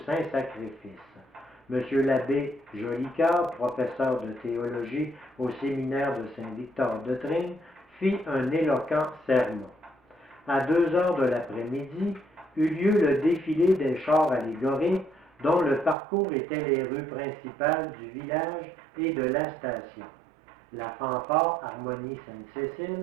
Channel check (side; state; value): left; drops out; at 16.0 s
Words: Saint-Sacrifice. M. l'abbé Jolicoeur, professeur de théologie au séminaire de Saint-Victor-de-Tring, fit un éloquent sermon. À 2 heures de l'après-midi, eut lieu le défilé des chars allégoriques dont le parcours était les rues principales du village et de la station. La fanfare Harmonie